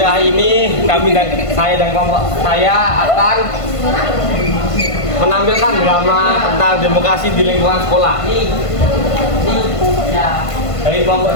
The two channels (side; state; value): right; late; 1.5 ms